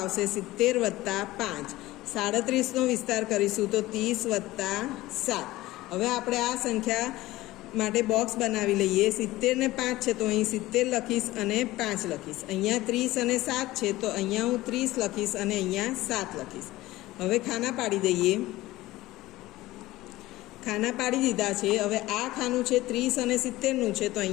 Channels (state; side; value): quieter; right; 17.7 dB